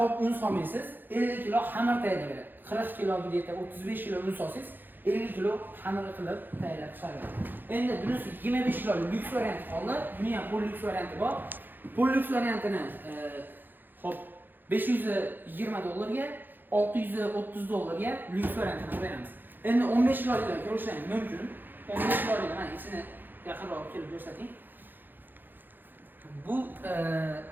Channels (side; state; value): left; late; 0.091 ms